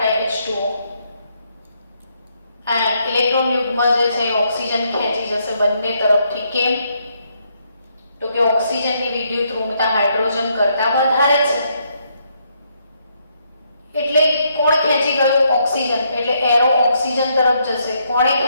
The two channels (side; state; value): both; inverted; correlation -0.75